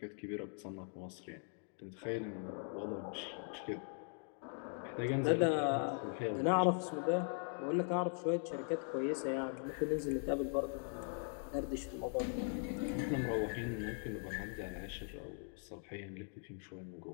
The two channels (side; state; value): right; silent; 51 dB below the other